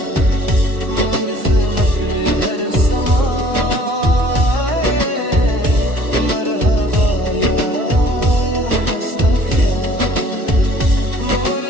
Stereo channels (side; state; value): left; late; 1.2 ms